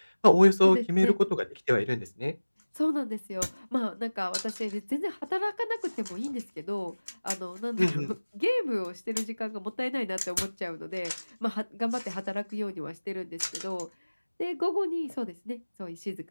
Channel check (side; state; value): both; inverted; correlation -1.00